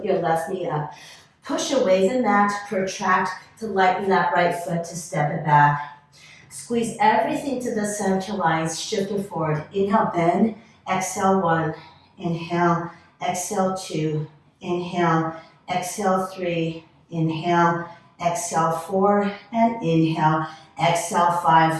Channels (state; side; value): identical; both; correlation 1.00